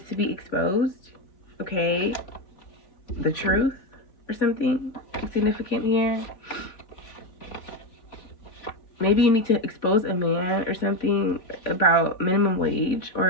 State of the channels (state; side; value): late; right; 3.5 ms